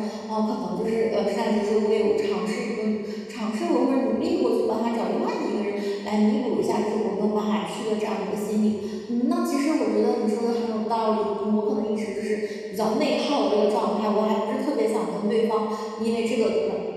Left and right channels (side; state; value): both; identical; correlation 1.00